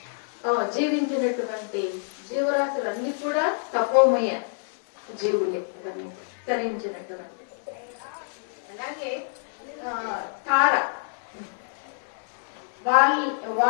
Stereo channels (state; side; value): silent; right; 60 dB below the other